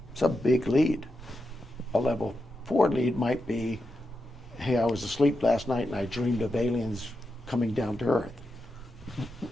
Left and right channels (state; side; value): normal; both; correlation 0.87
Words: It's a big lead. A level 4 lead might be, hey, I was asleep last night and I dreamed of aliens coming down to Earth.